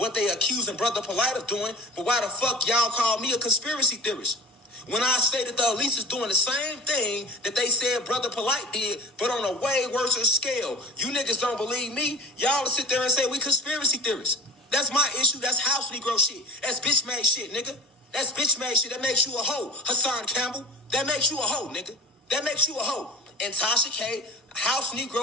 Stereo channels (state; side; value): normal; both; correlation 0.38